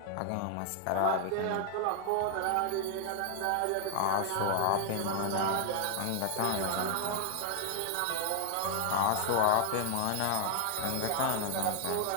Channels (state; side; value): different; both; correlation 0.00